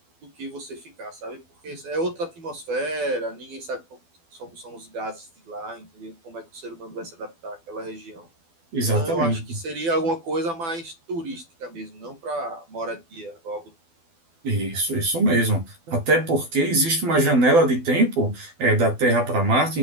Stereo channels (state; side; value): late; left; 12 ms